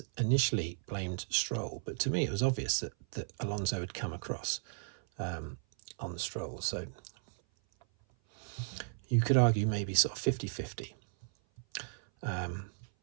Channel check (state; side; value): silent; left; 54 dB below the other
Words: initially blamed Stroll, but to me it was obvious that Alonso had come across on Stroll. So you could argue maybe sort of 50-50.